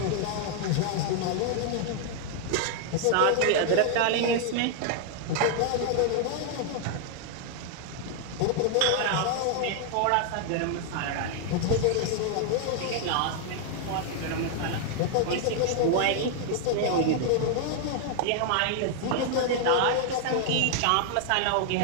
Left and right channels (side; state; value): both; different; correlation 0.00